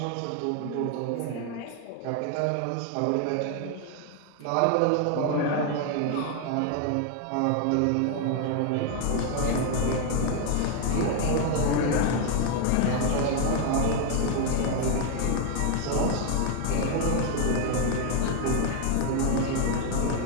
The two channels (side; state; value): both; different; correlation 0.00